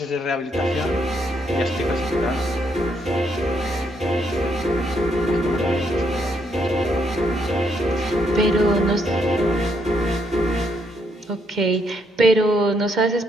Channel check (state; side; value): normal; both; correlation 0.74